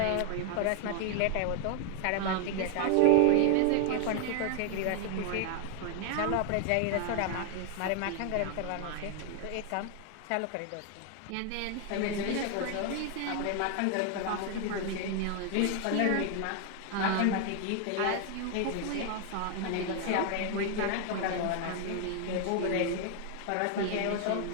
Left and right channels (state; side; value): different; both; correlation 0.00